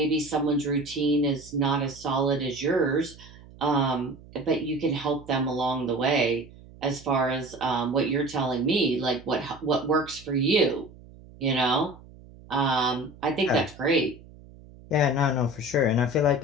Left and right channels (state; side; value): noise; right; hum, 21 dB below the sound